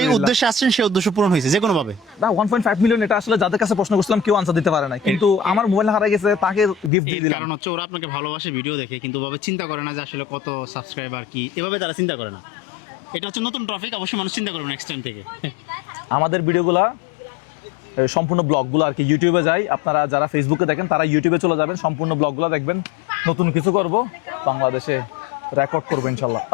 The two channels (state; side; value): drops out; right; at 6.9 s